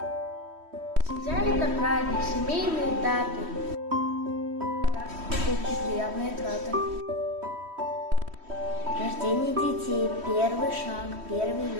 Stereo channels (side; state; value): left; late; 3.1 ms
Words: Семья – это праздник, семейные даты. Покупки, приятные траты. Рождение детей, первый шаг, первый